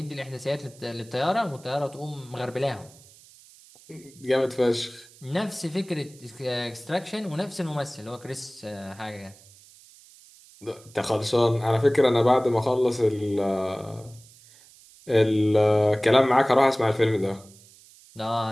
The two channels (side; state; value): right; noise; hiss, 24 dB below the sound